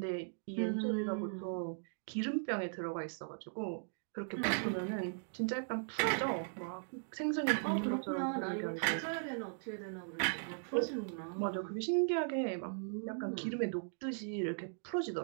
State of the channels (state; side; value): silent; left; digital silence